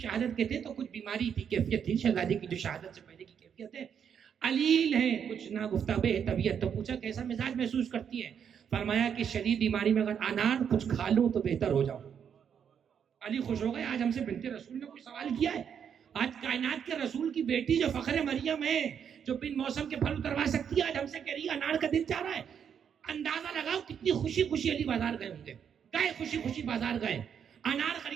کے تھے تو کچھ بیماری تھی، کیفیت تھی شہزادی کی جو شہادت سے پہلے کی کیفیت ہے، علیل ہے، کچھ نا گفتگو ہے طبیعت. تو پوچھا کیسا مزاج محسوس کرتی ہے؟ فرمایا کہ شدید بیماری میں اگر انار کچھ کھا لوں تو بہتر ہو جاؤں. علی خوش ہو گئے. آج ہم سے بنت رسول نے کوئی سوال کیا ہے؟ آج کائنات کے رسول کی بیٹی جو فخر مریم ہے، جو بن موسم کے پھل اتروا سکتی ہے، آج ہم سے کہہ رہی ہے انار کا دل چاہ رہا ہے. اندازہ لگاؤ کتنی خوشی خوشی علی بازار گئے ہوں گے. گئے خوشی خوشی بازار گئے، انار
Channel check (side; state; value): left; quieter; 7.9 dB